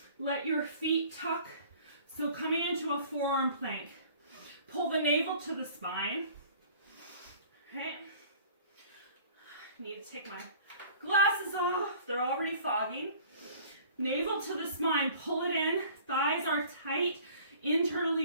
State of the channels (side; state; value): both; inverted; correlation -0.50